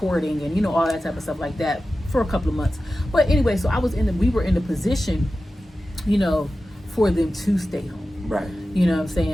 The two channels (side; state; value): both; normal; correlation 0.94